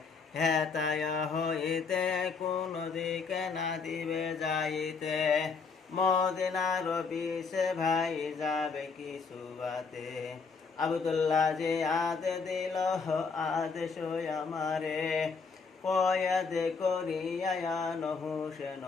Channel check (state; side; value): quieter; right; 5.0 dB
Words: হেতায় হইতে কোন দিকে না দিবে যাইতে, মদিনার বিষে ভাই যাবে কিছু বাতে। আব্দুল্লাহ যে আদে দিল আদেশ আমারে, কয়াদ করিয়া হুসেন